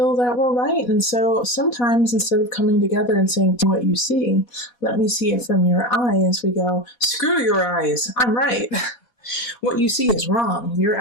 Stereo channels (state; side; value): late; right; 4.1 ms